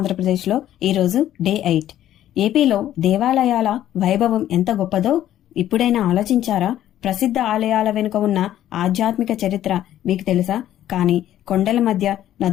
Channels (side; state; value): right; quieter; 12.3 dB